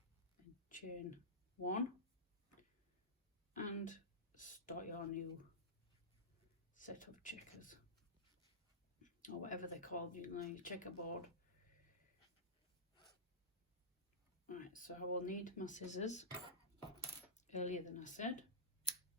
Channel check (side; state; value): both; normal; correlation -0.15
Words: and chain 1 and start your new set of checkers, or whatever they're called, you know, your checkerboard. Right, so I will need my scissors earlier than I said.